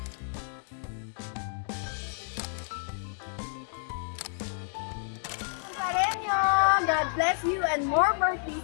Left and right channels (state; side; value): silent; right; digital silence